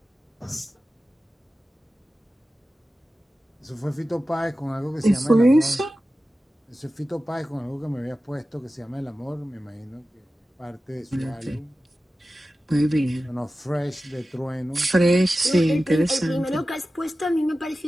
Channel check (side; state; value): both; normal; correlation 0.95